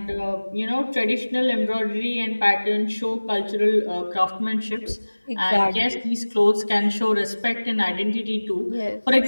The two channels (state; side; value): inverted; both; correlation -1.00